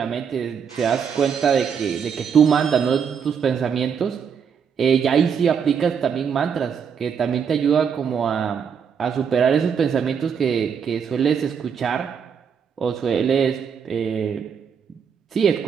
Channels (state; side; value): quieter; left; 7.1 dB